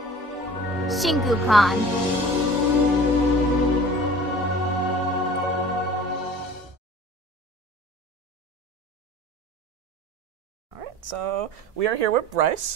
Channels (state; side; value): normal; both; correlation 0.43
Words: ShinkouCon. So we are here with